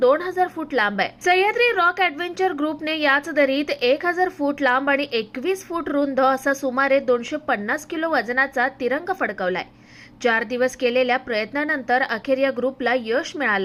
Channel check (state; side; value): identical; both; correlation 1.00